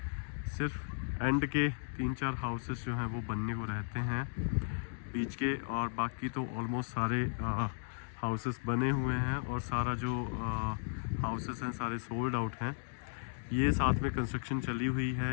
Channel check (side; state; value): right; silent; digital silence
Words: सिर्फ एंड के 3-4 हाउसेस जो हैं वो बनने को रहते हैं बीच के, और बाकी तो ऑलमोस्ट सारे हाउसेस बने हुए हैं और सारा जो हाउसेस हैं सारे सोल्ड आउट हैं। ये साथ में कंस्ट्रक्शन चली हुई